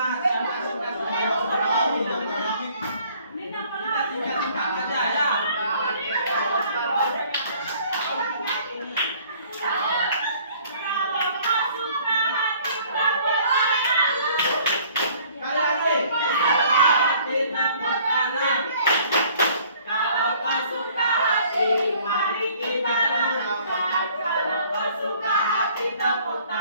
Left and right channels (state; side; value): inverted; both; correlation -0.57